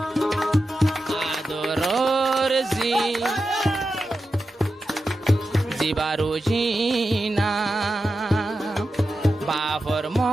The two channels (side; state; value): both; normal; correlation 0.91